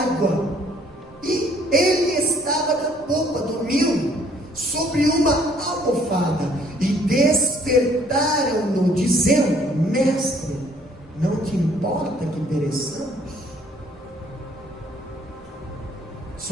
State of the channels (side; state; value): both; normal; correlation 0.62